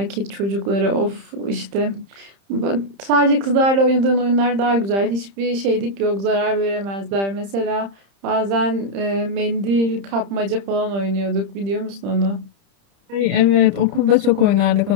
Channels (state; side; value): late; left; 30 ms